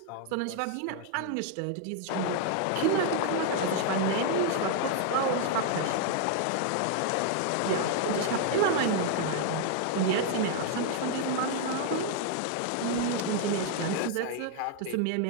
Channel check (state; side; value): different; both; correlation 0.00